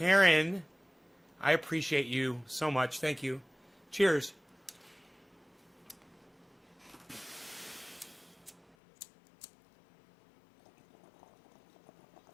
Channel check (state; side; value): drops out; right; at 8.7 s